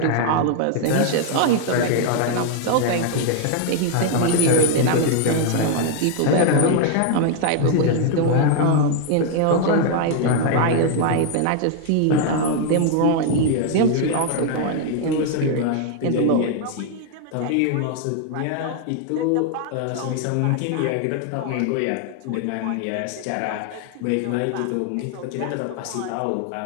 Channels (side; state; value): both; different; correlation 0.00